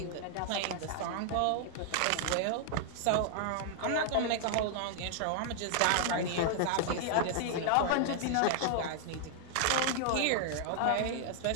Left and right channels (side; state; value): both; different; correlation 0.00